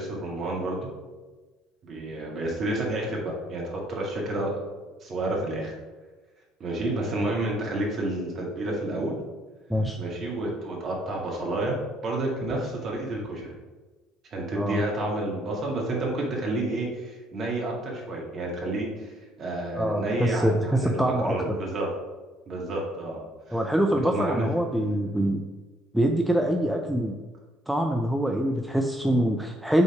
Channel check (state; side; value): normal; both; correlation 0.71